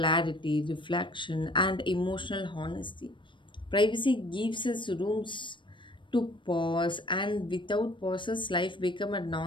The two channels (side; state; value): right; late; 0.24 ms